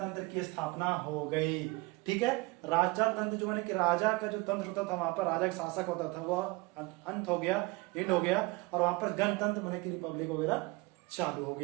की स्थापना हो गई। ठीक है, राजा तंत्र जो माने कि राजा का जो तंत्र होता था, वहां पर राजा का शासक होता था, वो अंत हो गया, एंड हो गया, और वहां पर गणतंत्र माने कि रिपब्लिक वगैरह चालू हो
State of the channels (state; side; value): quieter; left; 24.0 dB